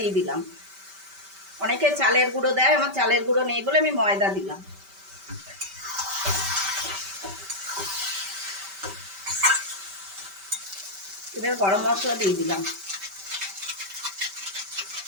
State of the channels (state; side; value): late; left; 5.2 ms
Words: দিলাম। অনেকে চালের গুঁড়ো দেয়, আমার চালের গুঁড়ো নেই বলে আমি ময়দা দিলাম। এবার গরম মশলা দিয়ে দিলাম।